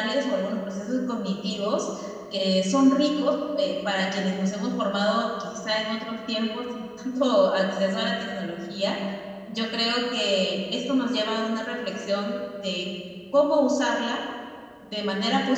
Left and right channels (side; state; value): both; identical; correlation 1.00